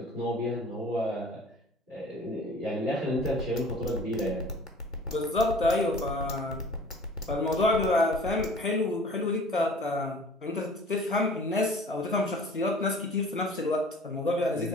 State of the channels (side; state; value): both; normal; correlation 0.47